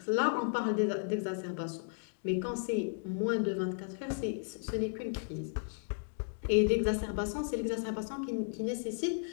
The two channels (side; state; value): right; silent; digital silence